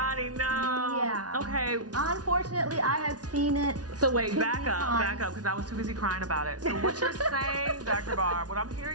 No. Yeah. Okay. Unfortunately, I have seen it. So wait, too back many up, times. because I was too busy crying about it. So what you're saying, Dr. Barb, what I'm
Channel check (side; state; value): left; late; 0.69 ms